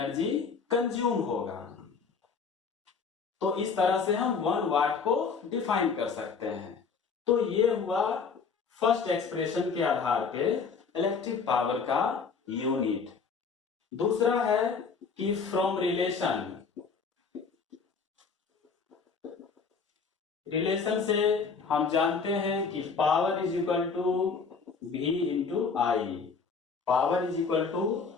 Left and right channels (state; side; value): quieter; right; 5.3 dB